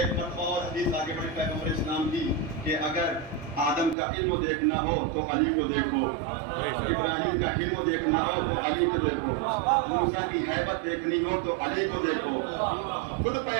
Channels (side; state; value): left; drops out; at 4.0 s